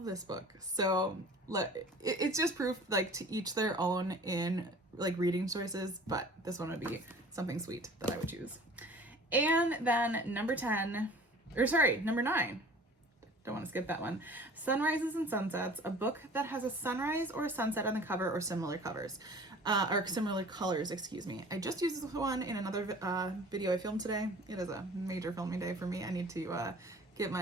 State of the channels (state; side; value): normal; both; correlation 0.45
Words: this book. So it's just proof, like, to each their own in like reading choices, but this one would be something sweet that I would choose. And then number 9. Don't want to skip that one. Sunrises and Sunsets, a book that has a sunrise or a sunset on the cover or similar covers, or similar colors, excuse me. I just used this one in another video I filmed today. It is a major filming day for me. I need to get